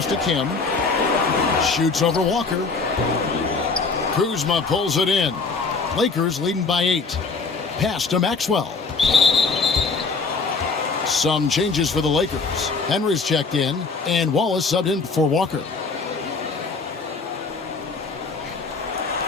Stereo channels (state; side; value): quieter; right; 4.4 dB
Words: to Kim. Shoots over Walker. Kuzma pulls it in. Lakers leading by 8. Pass to Maxwell. Some changes for the Lakers. Henry's checked in, and Wallace subbed in for Walker.